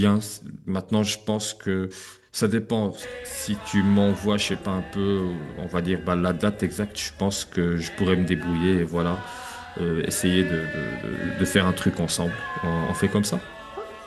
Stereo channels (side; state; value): both; identical; correlation 1.00